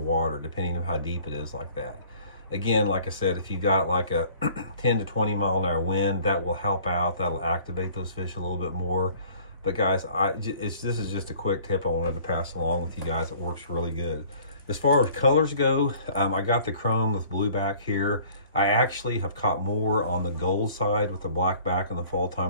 depending on how deep it is like that. Again, like I said, if you got like a 10 to 20 mile an hour wind, that will help out. That'll activate those fish a little bit more. But guys, this is just a quick tip I wanted to pass along with you guys. It works really good. As far as colors go, I got the chrome with blue back here. I actually have caught more on the gold side with the black back in the fall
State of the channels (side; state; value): both; inverted; correlation -0.52